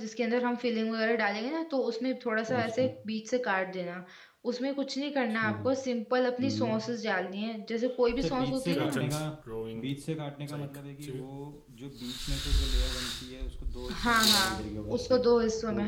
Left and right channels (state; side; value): identical; both; correlation 1.00